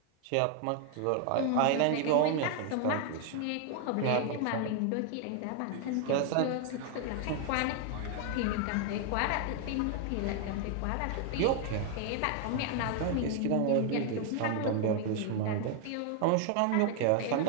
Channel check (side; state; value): both; different; correlation 0.00